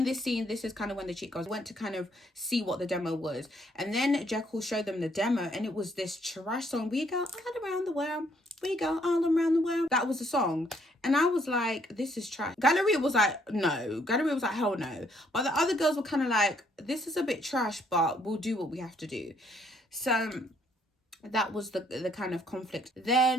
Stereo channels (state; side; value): normal; both; correlation 0.68